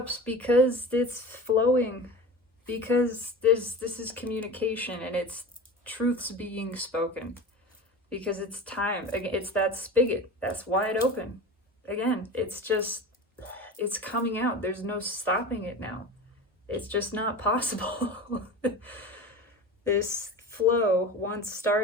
because it's flowing, because this is communication and it's truths being spoken, because it's time. It's that spigot that's wide open. Again, it's coming out. There's no stopping it now. It's just not possible. This flow, once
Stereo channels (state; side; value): normal; both; correlation 0.32